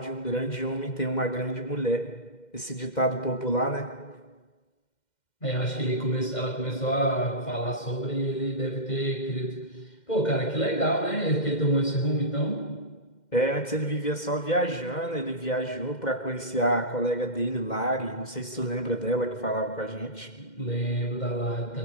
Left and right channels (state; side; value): late; right; 2.1 ms